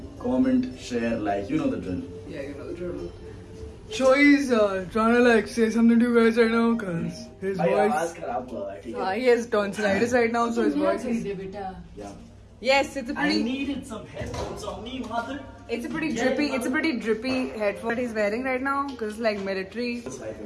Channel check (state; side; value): identical; both; correlation 1.00